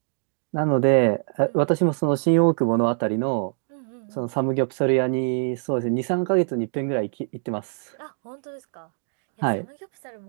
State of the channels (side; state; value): left; silent; digital silence